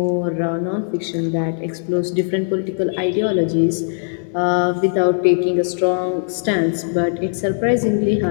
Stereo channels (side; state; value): right; silent; digital silence